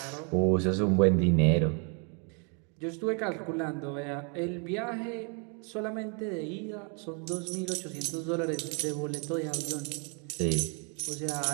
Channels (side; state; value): left; quieter; 37.6 dB